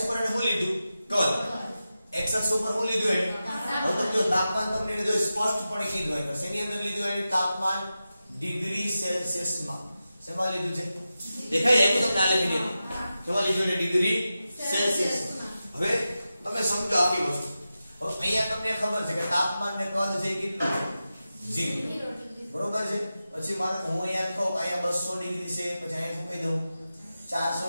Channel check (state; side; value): inverted; both; correlation -0.92